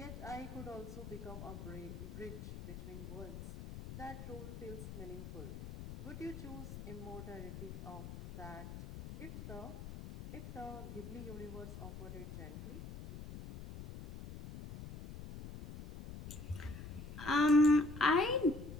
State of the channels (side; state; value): left; noise; rumble, 10 dB below the sound